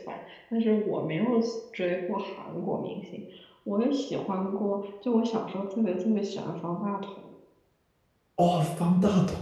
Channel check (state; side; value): identical; both; correlation 1.00